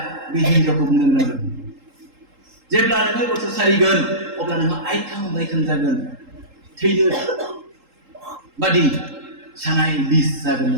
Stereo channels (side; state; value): left; late; 3.8 ms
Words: बे हिन्जावखौ बुंनो गोनां जादों जेब्ला नोङो गथ' सारिगोन अब्ला नोङो आइखां बायखां जागोन थैनो बादि सानाय बिस जागोन